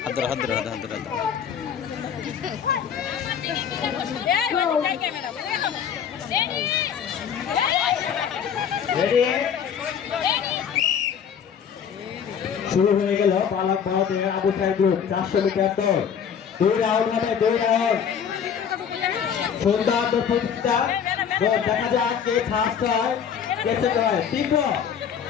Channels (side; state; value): right; quieter; 7.8 dB